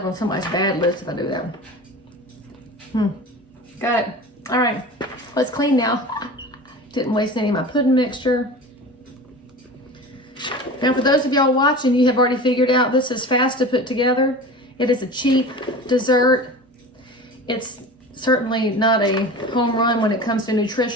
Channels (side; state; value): both; normal; correlation 0.35